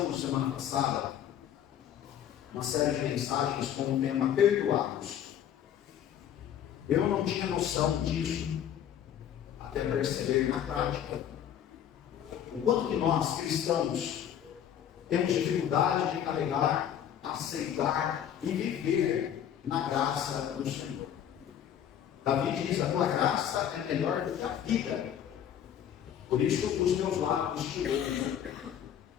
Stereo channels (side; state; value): right; quieter; 9.7 dB